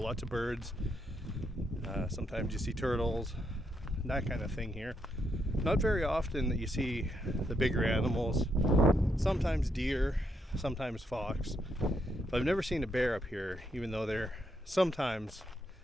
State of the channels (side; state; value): both; normal; correlation 0.78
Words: Lots of birds. Sometimes you see turtles, that kind of thing here. Not very often that you see the bigger animals. Sometimes deer, sometimes fox. But I've never seen a bear up here, even though they're sometimes